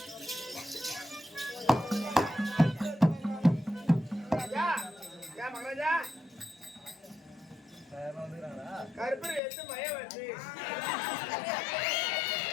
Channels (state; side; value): drops out; right; at 9.4 s